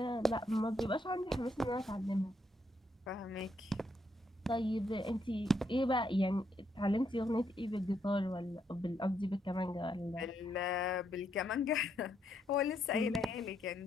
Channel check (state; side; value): normal; both; correlation 0.76